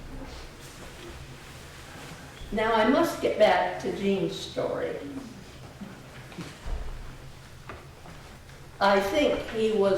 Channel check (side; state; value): both; identical; correlation 1.00